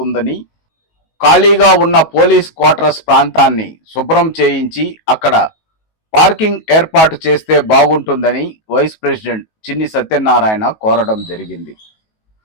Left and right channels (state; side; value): late; right; 19 ms